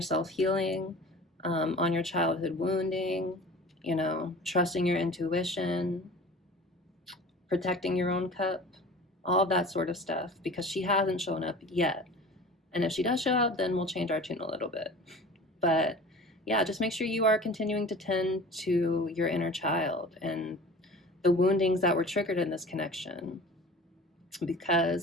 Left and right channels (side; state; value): both; normal; correlation 0.40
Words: self-healing, on your childhood wounding, trusting your intuition, protecting your own cup, all of that sort of stuff, because she hasn't shown up yet. And if she does show up, then we'll change our tune a little bit. But yeah, just make sure you are continuing to tend to your inner child and the woundings that were triggered in this connection.